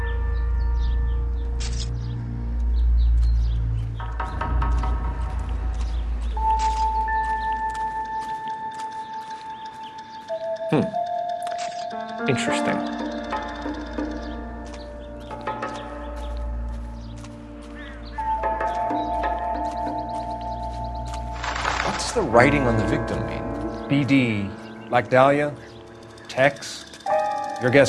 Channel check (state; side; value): identical; both; correlation 1.00